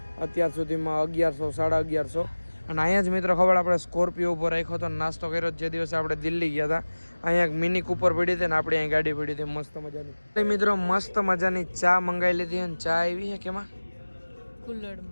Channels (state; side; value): inverted; both; correlation -1.00